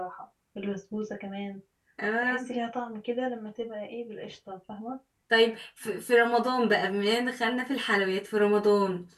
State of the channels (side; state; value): both; identical; correlation 1.00